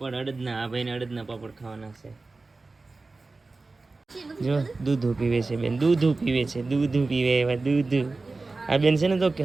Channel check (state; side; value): quieter; left; 3.6 dB